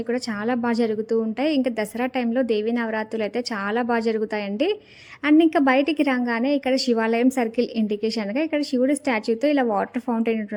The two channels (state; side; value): identical; both; correlation 1.00